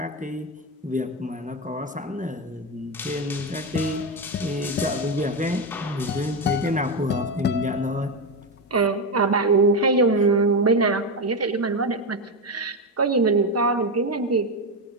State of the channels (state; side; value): normal; both; correlation 0.11